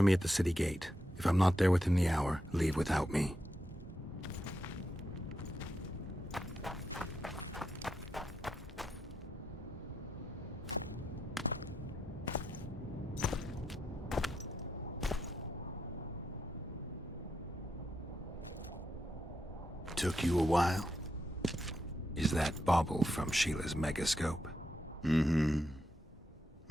me at the city gate. If I'm not there within the hour, leave without me. Took you a while? Is that bauble from Sheila's megascope? Mm-hmm.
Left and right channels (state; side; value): normal; both; correlation 0.83